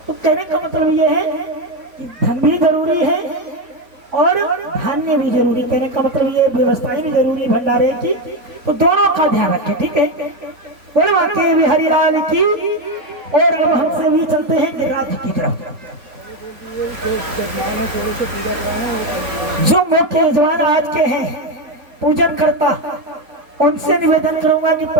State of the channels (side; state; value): left; late; 3.9 ms